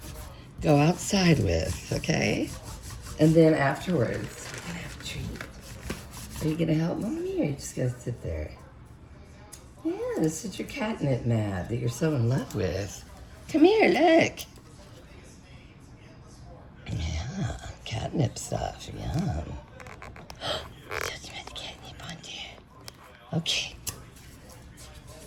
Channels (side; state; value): both; identical; correlation 1.00